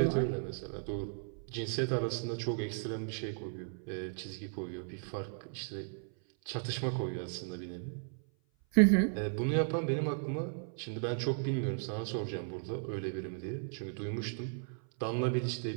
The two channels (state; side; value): silent; left; 54 dB below the other